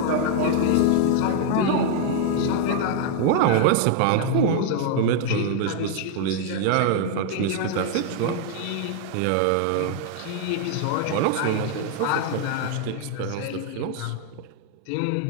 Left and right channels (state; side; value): different; both; correlation 0.00